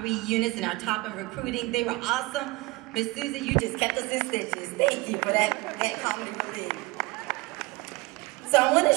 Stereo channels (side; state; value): left; quieter; 22.7 dB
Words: units in our top in recruiting. They were awesome. Miss Susan, you just kept us in stitches. Thank you for that comedy relief. So I want to